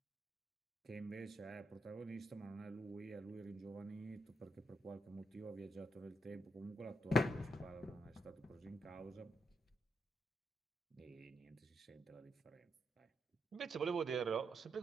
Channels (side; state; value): both; normal; correlation 0.81